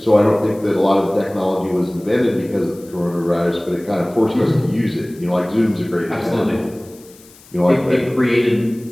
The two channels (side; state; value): left; noise; hiss, 25 dB below the sound